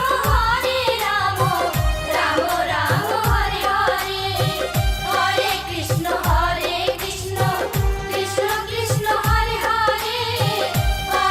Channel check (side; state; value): both; identical; correlation 1.00